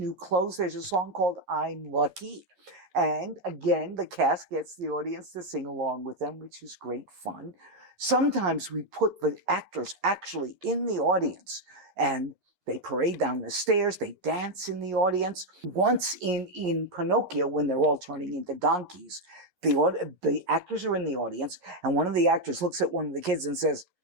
Clothes, there's a song called I'm Lucky. And again, the cast gets the audience to sing along with them, which is great fun. Sometimes we put the actors actually in the audience and they parade down the stairs, they dance in the audience. Once in Pinocchio, when they're all turning into donkeys, the actors are in the audience, and one of the actors looks at one of the kids and says,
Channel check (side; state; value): left; late; 11 ms